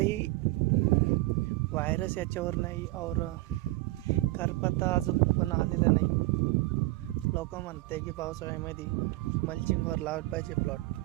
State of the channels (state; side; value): quieter; left; 20.1 dB